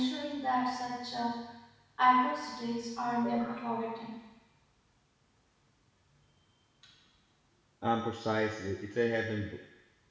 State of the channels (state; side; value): identical; both; correlation 1.00